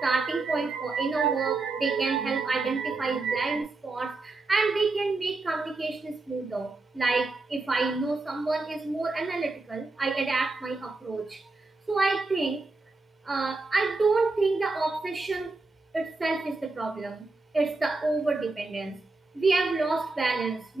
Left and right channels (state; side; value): quieter; left; 3.5 dB